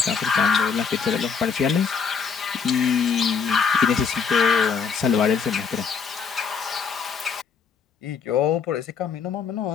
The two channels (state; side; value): quieter; right; 6.0 dB